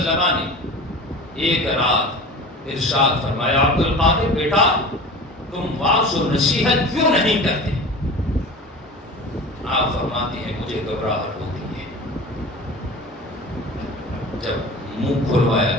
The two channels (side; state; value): both; normal; correlation 0.36